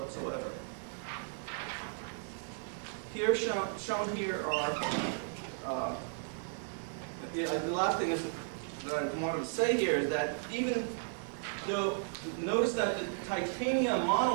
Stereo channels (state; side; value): silent; left; 54 dB below the other